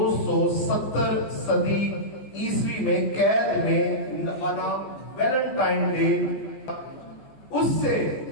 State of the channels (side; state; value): right; late; 14 ms